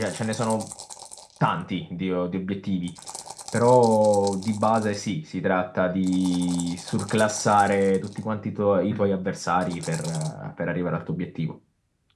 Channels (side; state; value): both; identical; correlation 1.00